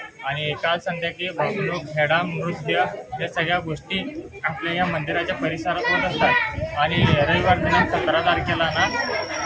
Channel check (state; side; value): identical; both; correlation 1.00